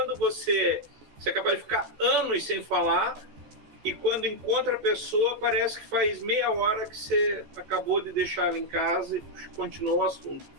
você é capaz de ficar anos sem falar, e quando encontra a pessoa, parece que faz meia hora que você acabou de deixar ela em casa e continuou o assunto.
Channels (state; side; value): late; left; 14 ms